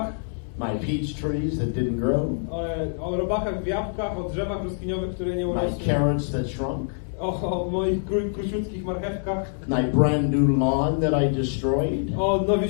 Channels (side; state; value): right; silent; 62 dB below the other